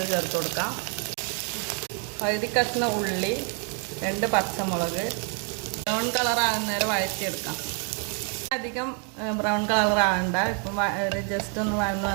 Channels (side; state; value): left; quieter; 39.5 dB